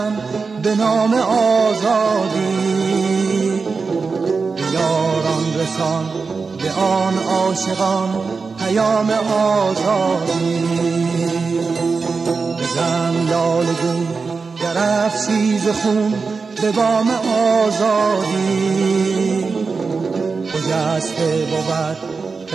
به نام آزادی. یاران رسان به آن عاشقان پیام آزادی. بزن لاله گون در افشیز خون به بام آزادی. خجسته بود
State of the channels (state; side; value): quieter; left; 4.7 dB